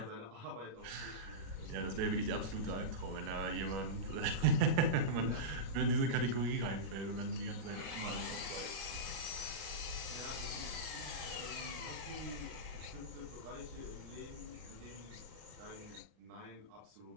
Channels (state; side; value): late; left; 37 ms